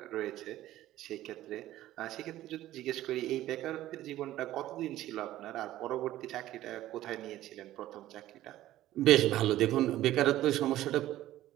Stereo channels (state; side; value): quieter; left; 14.4 dB